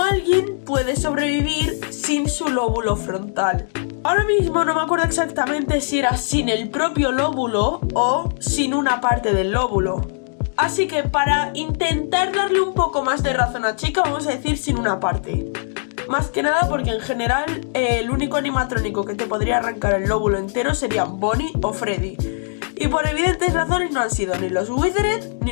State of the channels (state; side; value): silent; right; digital silence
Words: alguien puede sobrevivir sin su lóbulo frontal. Ahora mismo no me acuerdo exactamente si era sin el propio lóbulo o sin una parte del lóbulo. Así que para intentar darle un poco más de razón a Chica, vamos a decir sin una parte. Más que nada porque en general el único animatrónico que te podría arrancar el lóbulo entero serían Bonnie o Freddy. Y por evidentes razones no han sido ni los Withered ni